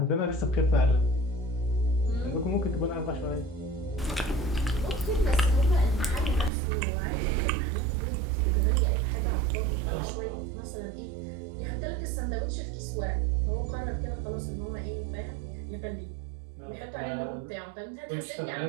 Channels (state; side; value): drops out; left; at 6.5 s